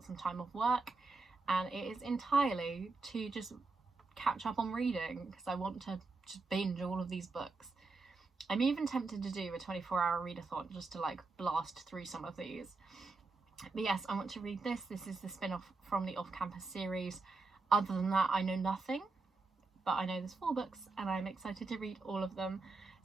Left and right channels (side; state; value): left; quieter; 3.8 dB